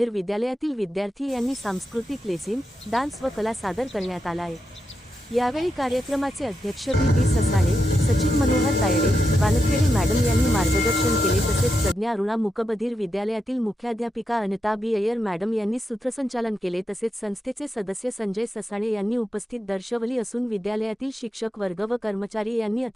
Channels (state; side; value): normal; both; correlation 0.86